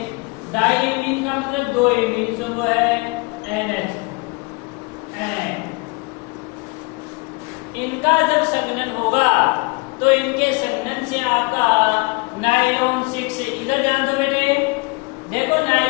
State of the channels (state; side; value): quieter; right; 28.2 dB